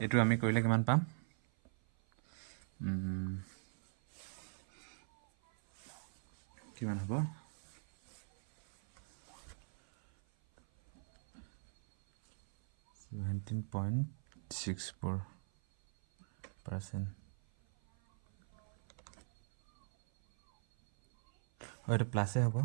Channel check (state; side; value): silent; left; 52 dB below the other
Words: এইটো আমি কৰিলে কিমান পাম কিমান হ'ব 17.64% এইটো প্লাছে হ'ব